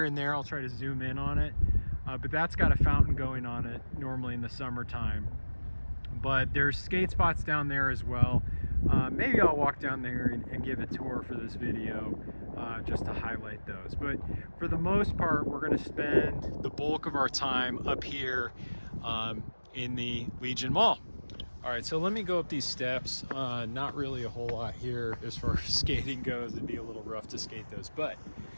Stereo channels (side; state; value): both; inverted; correlation -1.00